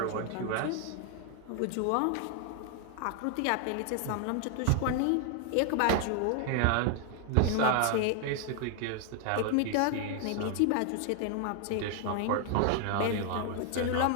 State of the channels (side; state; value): both; different; correlation 0.00